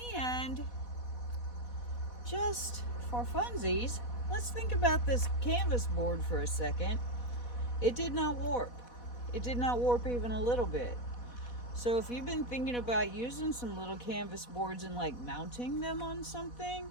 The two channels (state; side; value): late; right; 4.1 ms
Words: And just for funsies, let's think about this canvas board for a second. It did not warp. It did not warp even a little bit. So if you've been thinking about using some little canvas boards and like mounting them on something,